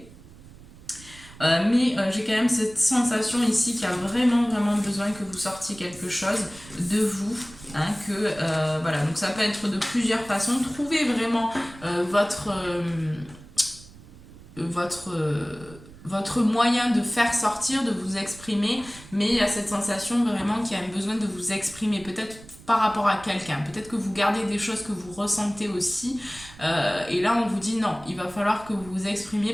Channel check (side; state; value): right; noise; rumble, 20 dB below the sound